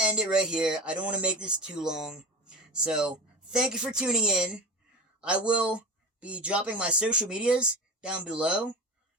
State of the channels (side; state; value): both; normal; correlation 0.28